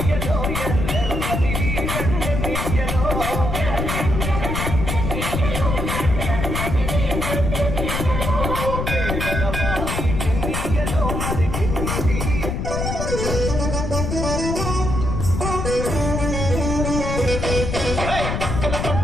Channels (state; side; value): noise; left; rumble, 2 dB below the sound